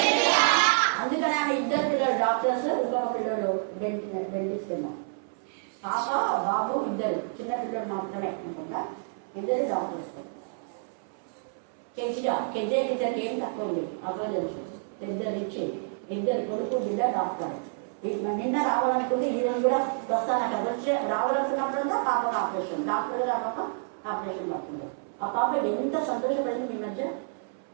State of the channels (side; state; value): left; silent; 59 dB below the other